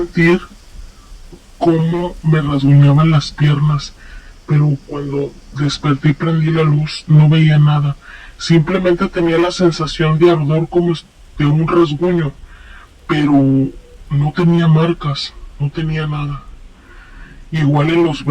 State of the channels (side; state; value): both; identical; correlation 1.00